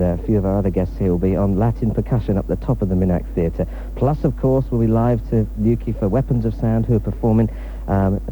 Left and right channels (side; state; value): both; identical; correlation 1.00